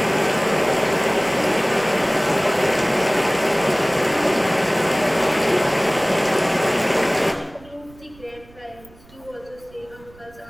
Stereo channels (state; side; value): noise; right; rumble, 25 dB below the sound